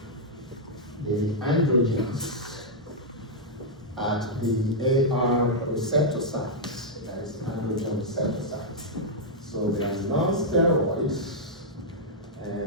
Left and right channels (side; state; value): both; normal; correlation -0.06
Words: the androgens at the AR receptor sites, that is androgen receptor sites. So they are non-steroids,